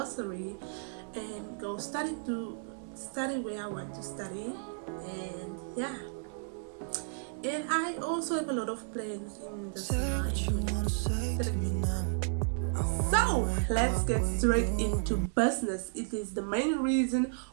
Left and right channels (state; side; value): silent; left; 56 dB below the other